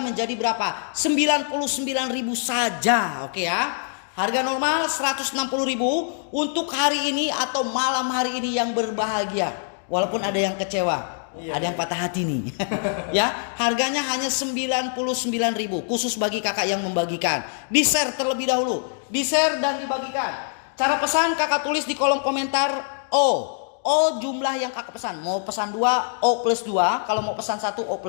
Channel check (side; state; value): right; silent; digital silence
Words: berapa? 99.000 saja. Oke ya. Harga normal 160.000 untuk hari ini atau malam hari ini yang berbahagia. Walaupun ada yang kecewa. Ada yang patah hati nih. Ya, harganya hanya 99.000 khusus bagi kakak yang membagikan. Di-share terlebih dahulu. Di-share dan dibagikan. Cara pesan kakak tulis di kolom komentar O jumlah yang kakak pesan. Mau pesan 2 O plus 2. Kalau mau pesan 1 O